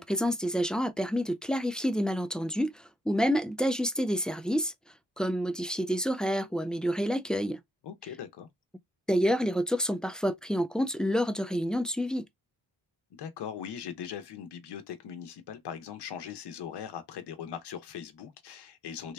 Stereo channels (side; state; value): both; normal; correlation 0.81